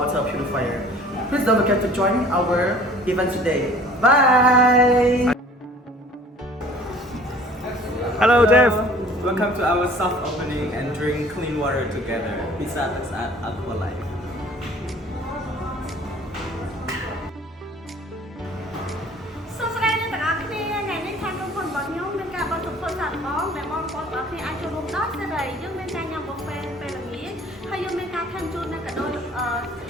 water purifier. Please don't forget to join our event today. Bye! Hello, Jeff. Welcome to our soft opening and drink clean water together. Pizza is at AquaLife. សួស្តីអ្នកទាំងអស់គ្នាថ្ងៃនេះខាងក្រុមហ៊ុនរបស់ខ្ញុំមានការបោះទុកធ្វើសាកល្បងដែលបងប្អូនទាំងអស់គ្នាអាចចូលរួមដោយសេរីយើងមានការញ៉ាំប៊ូហ្វេពេលល្ងាចហើយយើងមានការថែមជូននៅកាដូ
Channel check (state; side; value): normal; both; correlation 0.50